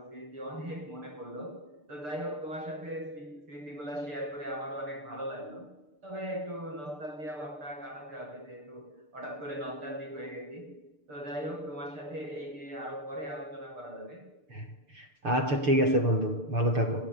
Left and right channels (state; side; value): late; left; 6.7 ms